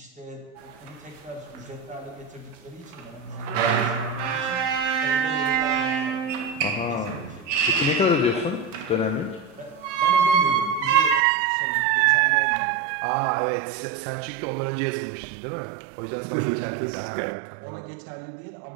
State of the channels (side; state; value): left; drops out; at 11.2 s